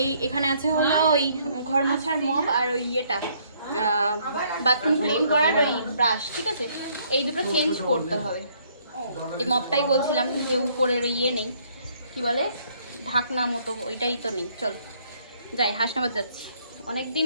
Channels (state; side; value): inverted; both; correlation -0.65